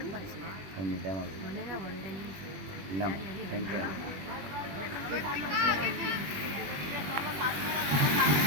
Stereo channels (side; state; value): left; late; 21 ms